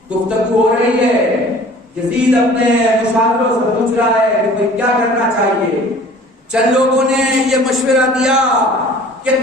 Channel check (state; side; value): normal; both; correlation 0.48